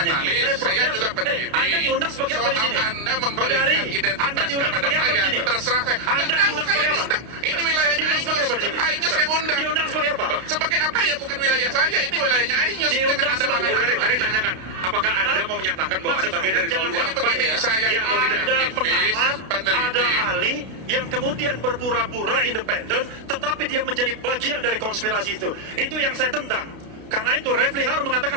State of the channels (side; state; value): left; late; 32 ms